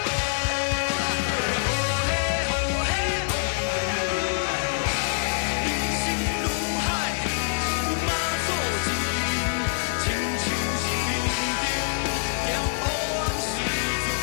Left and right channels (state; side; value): silent; right; digital silence